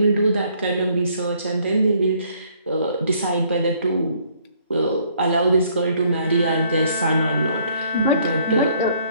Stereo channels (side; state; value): both; inverted; correlation -0.64